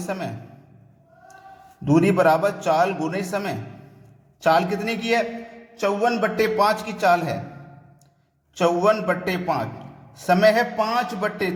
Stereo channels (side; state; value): both; identical; correlation 1.00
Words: दूरी बराबर चाल गुने समय। चाल कितने की है, 54 बट्टे 5 की चाल है, 54 बट्टे 5, समय है 5 बट्टे